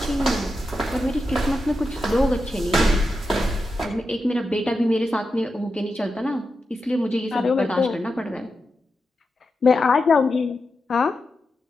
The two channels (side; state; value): both; normal; correlation 0.89